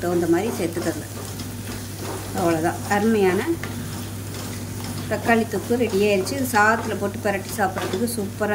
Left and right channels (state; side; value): identical; both; correlation 1.00